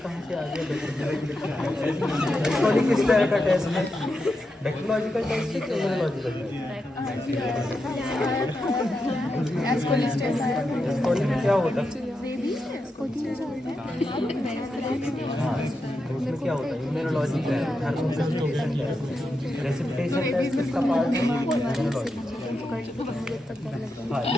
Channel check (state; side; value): normal; both; correlation 0.87